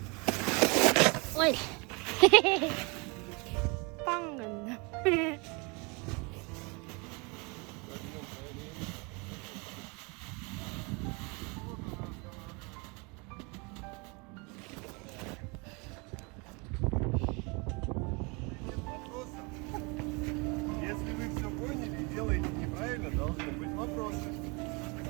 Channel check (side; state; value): left; quieter; 29.7 dB